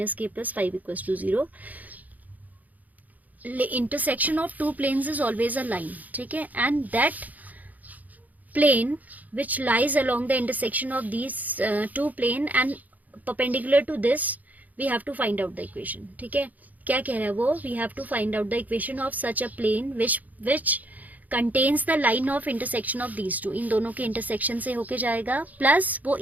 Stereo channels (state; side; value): late; left; 0.079 ms